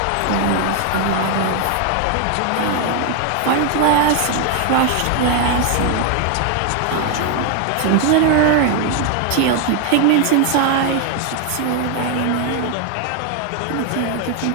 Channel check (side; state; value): both; different; correlation 0.01